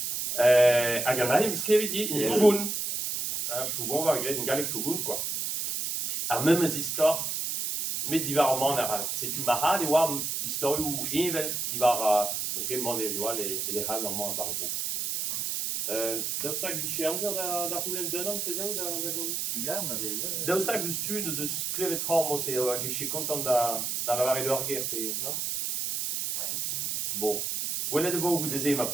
Hag an ahem skrevet di, in pougoun, pougoun va gret, in galek pougoun, quoi. Ar memes istor, met divar ar man ar setu ma hal e oa historiou evel divar, ok, man e oa le hal ar man bar bo. Daoustag biche amzer da roulen denan pezao da gant? Ya, ma vez. Daoustag deus tud deus klevet tra mos e hag eche kontant da lavare d'or ger pe, non? Bon. Gwelet e vo goude ze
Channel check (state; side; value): noise; right; hiss, 2 dB below the sound